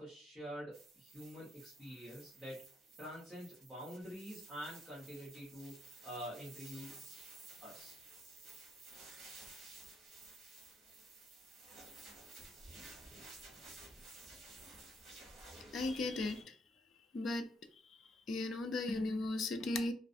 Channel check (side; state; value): both; normal; correlation 0.76